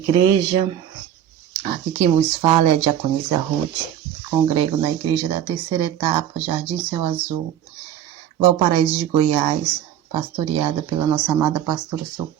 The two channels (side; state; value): left; quieter; 10.6 dB